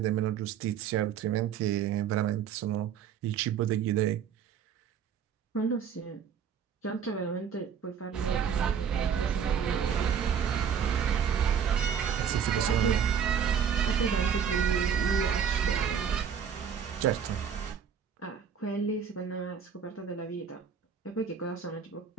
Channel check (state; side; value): quieter; left; 7.7 dB